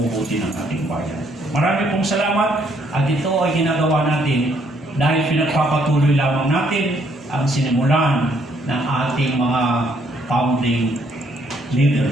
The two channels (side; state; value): both; normal; correlation 0.68